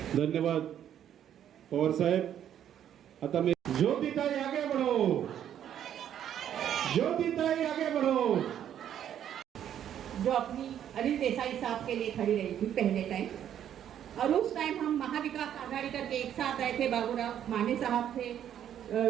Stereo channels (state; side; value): quieter; left; 10.1 dB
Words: धन्यवाद पवार साहेब. आता मी ज्योतिताई आगे बढ़ो, ज्योतिताई आगे बढ़ो. जो अपनी अनिल देसाई साहब के लिए खड़ी रही थी पहले टाइम, और उस टाइम हम महाविकास आघाड़ी करके एक साथ आए थे. बाबूराव माने साहब थे,